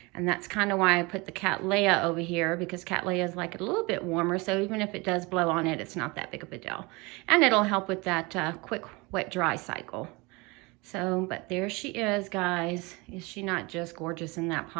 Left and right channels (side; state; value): left; quieter; 25.7 dB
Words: And that's kind of why I put the Cattleya over here, because Cattleya is like a little bit warmer. So even if it does blow on it, it's not that big of a deal. And it'll help with that quick wet dry cycle. So, but there she is, guys. Is she not just gorgeous in that